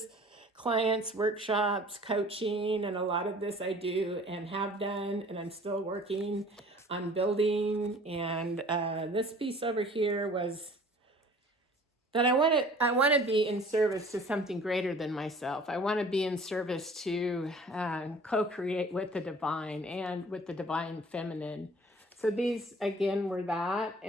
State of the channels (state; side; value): normal; both; correlation 0.49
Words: clients, workshops, coaching, and a lot of this I do and have done, and I'm still working on building. And this piece over here was that I want to be in service to something greater than myself. I want to be in service to co-create with the divine and with the divine feminine. So these again were that.